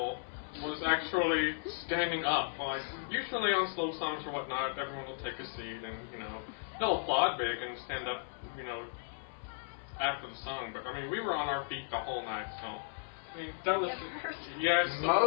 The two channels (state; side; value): silent; right; 54 dB below the other